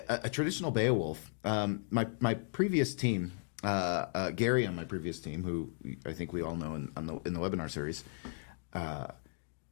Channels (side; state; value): right; silent; digital silence